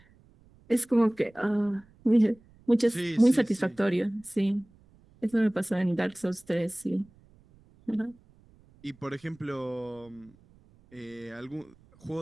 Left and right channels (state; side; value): noise; right; rumble, 28 dB below the sound